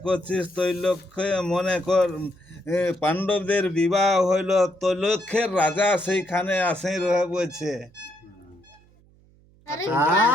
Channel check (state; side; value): noise; right; hum, 29 dB below the sound